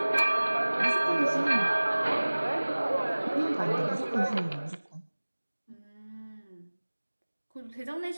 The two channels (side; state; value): both; inverted; correlation -1.00